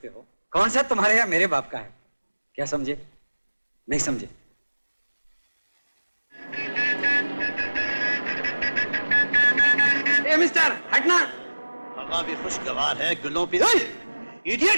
हो। कौन सा तुम्हारे या मेरे बाप का है? क्या समझे? नहीं समझे? ए मिस्टर, हटना। हवा भी खुशगवार है, गुलों पे।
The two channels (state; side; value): inverted; both; correlation -1.00